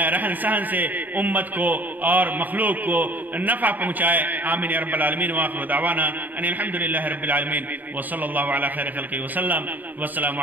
رہن سہن سے امت کو اور مخلوق کو نفع پہنچائے. آمین یا رب العالمین. وآخر دعوانا ان الحمدللہ رب العالمین وصلی اللہ علی خیر خلقہ وسلم. والسلام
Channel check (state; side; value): late; left; 0.085 ms